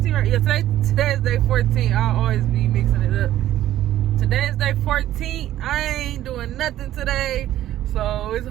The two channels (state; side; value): quieter; left; 13.2 dB